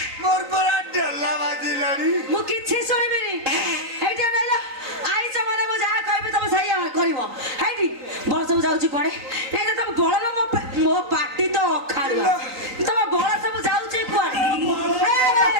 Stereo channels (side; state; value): left; late; 3.9 ms